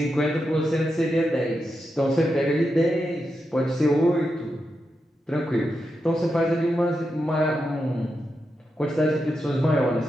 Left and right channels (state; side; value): normal; both; correlation 0.87